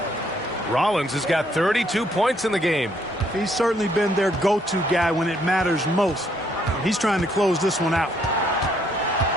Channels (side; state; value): both; normal; correlation 0.69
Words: Rollins has got 32 points in the game. He's certainly been their go-to guy when it matters most. He's trying to close this one out.